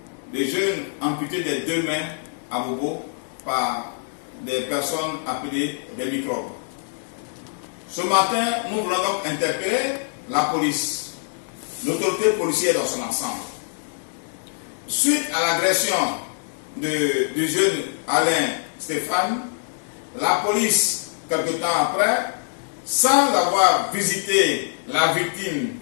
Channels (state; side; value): silent; right; digital silence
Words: le jeune amputé des deux mains à Bobo par des personnes appelées des microbes. Ce matin, nous voulons donc interpeller la police, l'autorité policière dans son ensemble. Suite à l'agression du jeune Alain Stéphane, la police, quelque temps après, sans avoir visité la victime